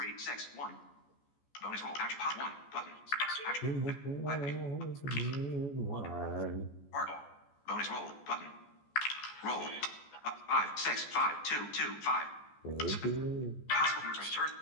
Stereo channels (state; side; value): late; right; 14 ms